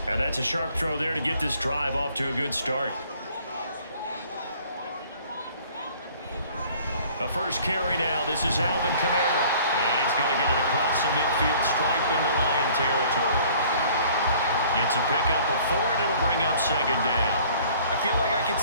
And that's a sharp throw there to get this drive off to a good start. The first carry now. This is Alvin Kamara. And he's going to get it across the midfield stripe into Lion territory. It's a pickup of 4, and it'll bring up 2nd down. I feel like I could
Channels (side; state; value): both; inverted; correlation -0.54